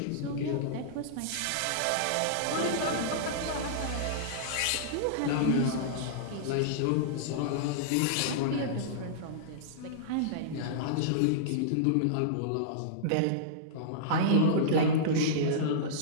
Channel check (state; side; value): different; both; correlation -0.03